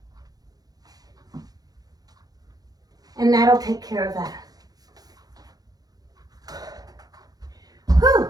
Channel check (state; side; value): late; left; 0.19 ms